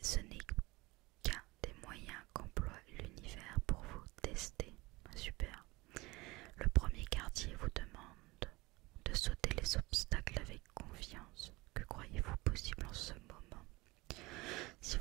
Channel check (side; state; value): left; quieter; 22.2 dB